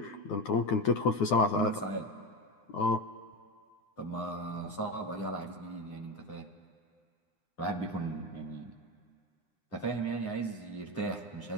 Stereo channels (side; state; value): right; late; 9.8 ms